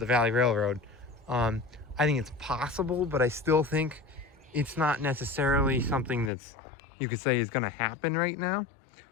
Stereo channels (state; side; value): drops out; right; at 6.3 s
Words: Railroad, I think it's possible, but I still think it's not necessarily something that's, you could say, is going to happen right now.